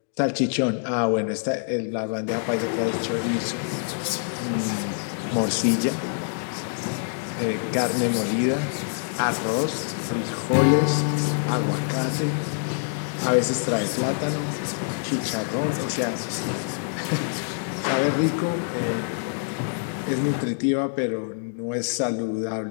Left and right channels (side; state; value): right; silent; digital silence